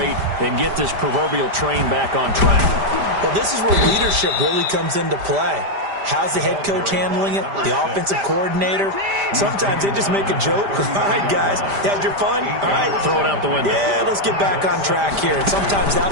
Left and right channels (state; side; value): late; left; 5.0 ms